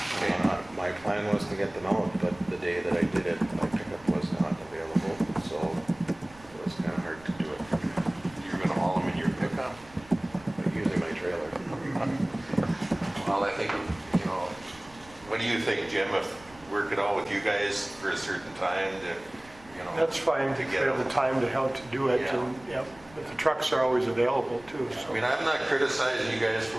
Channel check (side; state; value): right; noise; rumble, 24 dB below the sound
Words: My plan was to get them out, but the day that I did it, my pickup was not available, so it was kind of hard to do it. You're going to haul them in your pickup? Using my trailer. Well, I think, you know, what do you think, Jim, if work it out with you guys for a certain time to, you know? That's fine, to to get have the them. time to help to do it, Yeah. and, yeah, but the trucks are always available too, I so. mean, I'm not criticizing you guys for